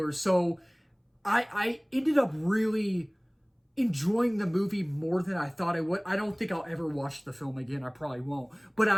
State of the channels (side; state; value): both; identical; correlation 1.00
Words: So I ended up really enjoying the movie more than I thought I would. I don't think I'll ever watch the film again. I probably won't. But